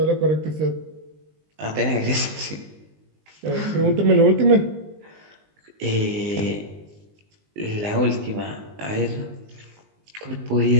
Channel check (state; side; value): late; left; 19 ms